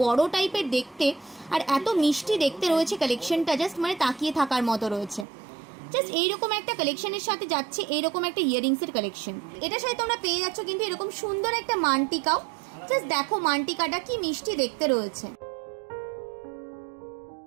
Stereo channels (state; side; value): drops out; left; at 5.2 s